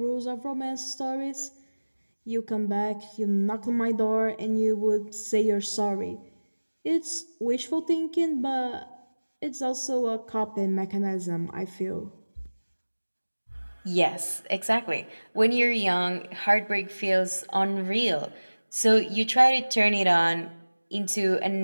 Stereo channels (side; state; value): both; inverted; correlation -1.00